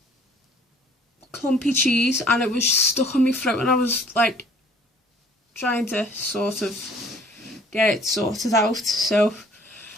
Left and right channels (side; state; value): both; normal; correlation 0.55